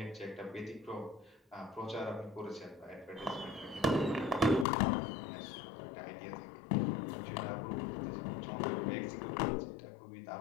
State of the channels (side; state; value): right; drops out; at 4.7 s